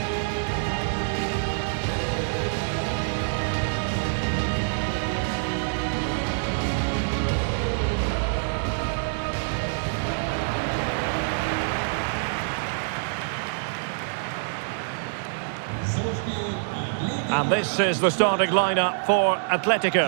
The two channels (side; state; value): left; silent; 61 dB below the other